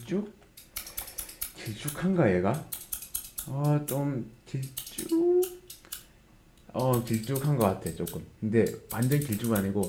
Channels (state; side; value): identical; both; correlation 1.00